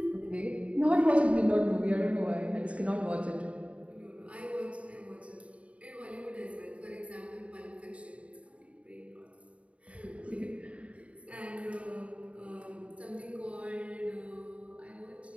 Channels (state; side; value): late; left; 0.064 ms